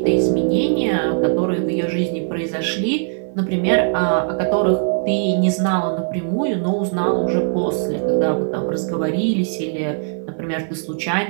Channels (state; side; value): silent; left; 57 dB below the other